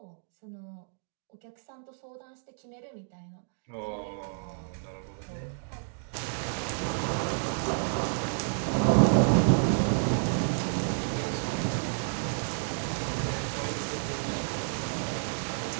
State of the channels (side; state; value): left; silent; digital silence